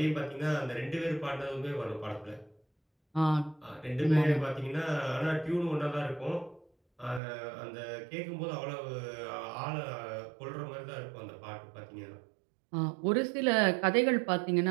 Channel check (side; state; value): left; drops out; at 7.2 s